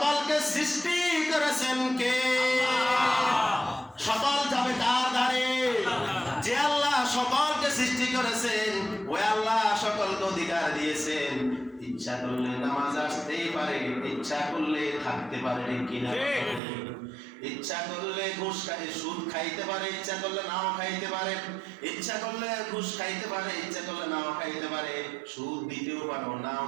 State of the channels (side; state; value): left; drops out; at 16.6 s